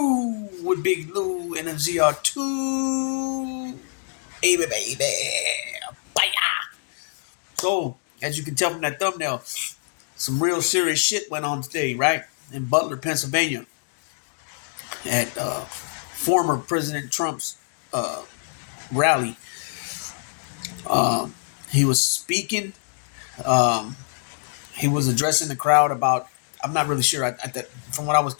with Big Lou and MZR2? Baby. Bye. So, as you can tell from that thumbnail, some real serious shit went on today, right? In Butler, Pennsylvania, at former President Trump's rally. He was speaking. He was addressing the crowd about, I'm not really sure. From what I was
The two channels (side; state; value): right; silent; 62 dB below the other